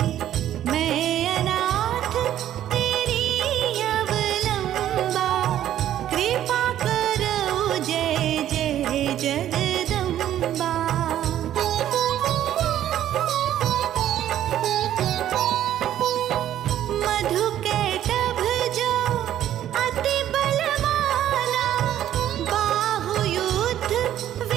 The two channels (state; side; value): quieter; left; 11.7 dB